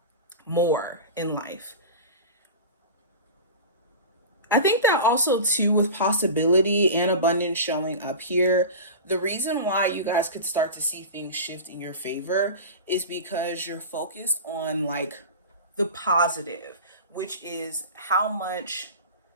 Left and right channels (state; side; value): inverted; both; correlation -0.30